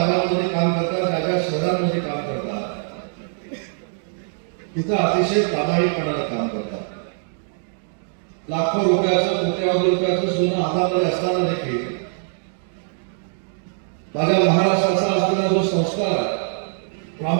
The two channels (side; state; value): left; silent; digital silence